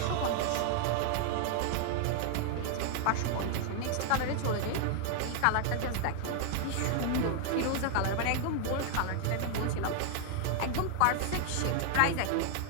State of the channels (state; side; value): different; both; correlation 0.00